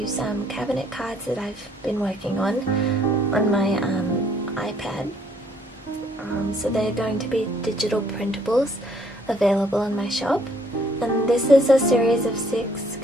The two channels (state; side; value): normal; both; correlation 0.64